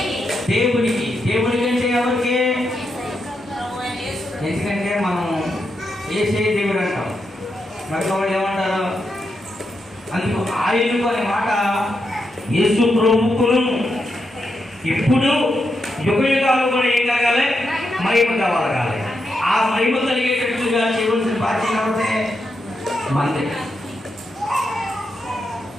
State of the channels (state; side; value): normal; both; correlation 0.84